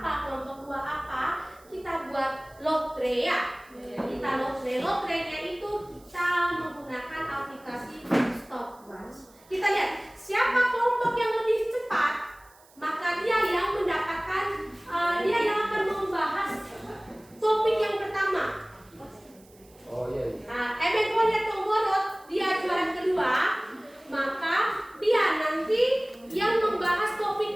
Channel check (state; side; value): noise; right; hiss, 28 dB below the sound